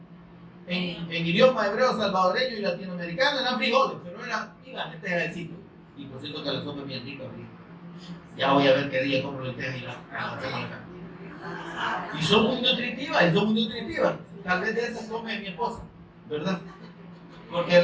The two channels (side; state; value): both; identical; correlation 1.00